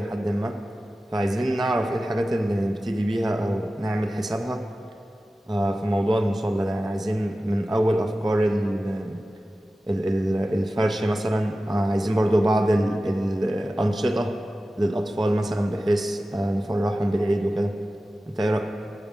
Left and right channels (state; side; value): normal; both; correlation 0.95